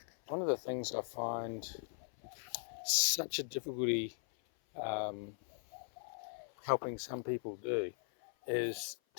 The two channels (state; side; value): silent; right; 52 dB below the other